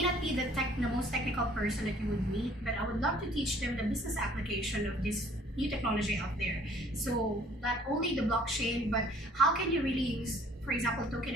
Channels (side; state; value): both; normal; correlation 0.57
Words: not be the most technical person that you would meet, but I would love to teach them the business application of this new technology out there. So not only the blockchain, but how can you really use, for example, token